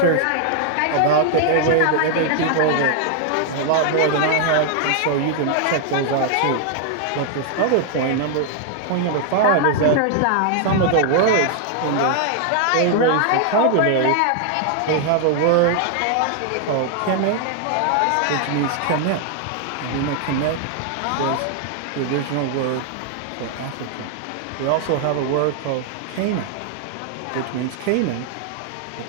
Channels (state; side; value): different; both; correlation 0.00